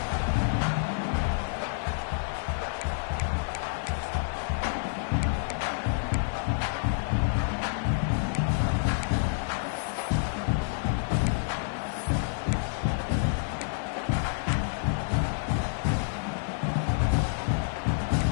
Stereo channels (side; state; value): right; silent; 58 dB below the other